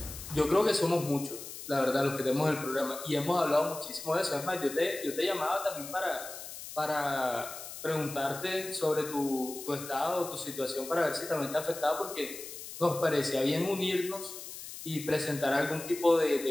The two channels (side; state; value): left; noise; hiss, 11 dB below the sound